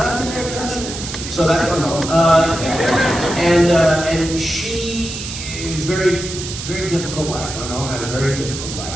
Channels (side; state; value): right; noise; hiss, 8 dB below the sound